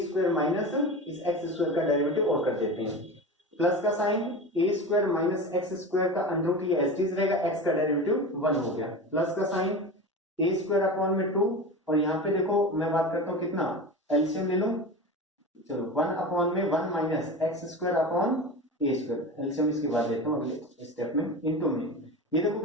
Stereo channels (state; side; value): normal; both; correlation 0.28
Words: माइनस इस एक्स स्क्वायर का डेरिवेटिव और कर देते हैं, प्लस का साइन ए स्क्वायर माइनस एक्स स्क्वायर का अंडर रूट ये एज इट इज रहेगा, एक्स का डेरिवेटिव 1 हो गया, प्लस का साइन ए स्क्वायर अपॉन में 2। और यहाँ पे देखो मैं बात करता हूँ कितना, एलसीएम ले लो, चलो 1 अपॉन में 1 माइनस एक्स स्क्वायर अपॉन ए स्क्वायर, एलसीएम इसके बाद लेता हूँ अगले स्टेप में, इनटू में ये देखो